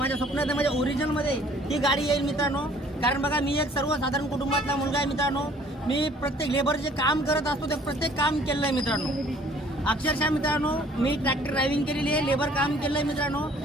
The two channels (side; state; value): both; normal; correlation 0.56